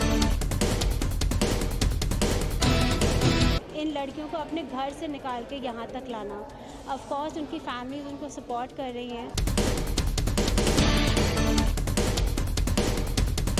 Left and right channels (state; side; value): identical; both; correlation 1.00